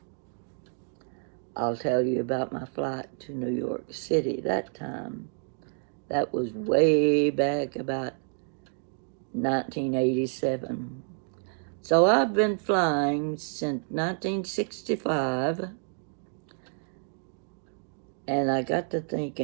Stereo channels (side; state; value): left; silent; 59 dB below the other